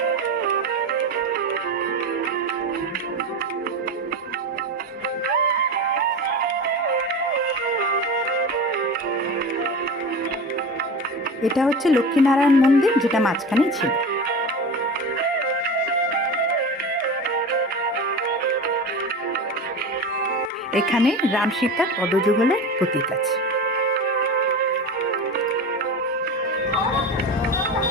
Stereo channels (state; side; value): normal; both; correlation 0.28